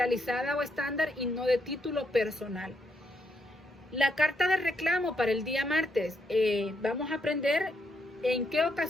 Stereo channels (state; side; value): normal; both; correlation 0.77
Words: o estándar y no de título personal. La carta de reclamo para el día martes. Vamos a aprender en qué